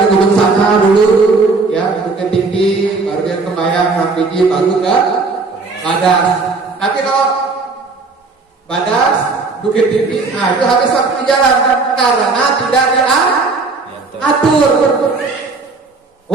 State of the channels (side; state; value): left; quieter; 3.9 dB